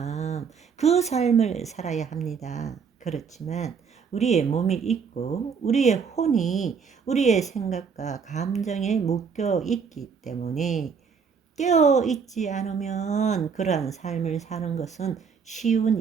그 삶을 살아야 합니다. 그렇지만 우리의 몸이 있고 우리의 혼이 우리의 생각과 감정에 묶여 있기 때문에 깨어 있지 않으면 그러한 삶을 사는 것은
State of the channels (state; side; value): quieter; left; 6.1 dB